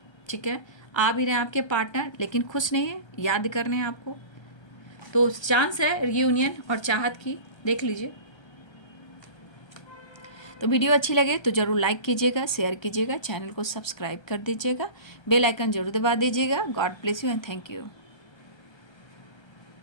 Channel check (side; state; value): right; late; 1.3 ms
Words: ठीक है। आ भी रहे हैं आपके पार्टनर, लेकिन खुश नहीं है, याद कर रहे हैं आपको। तो चांस है रीयूनियन और चाहत की, देख लीजिए। तो वीडियो अच्छी लगे तो ज़रूर लाइक कीजिएगा, शेयर कीजिएगा, चैनल को सब्सक्राइब कर दीजिएगा, बेल आइकन जरूर दबा दीजिएगा। God bless you and thank you.